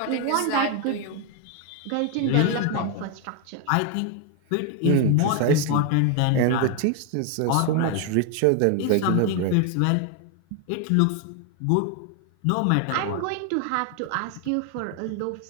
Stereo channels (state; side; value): different; both; correlation 0.01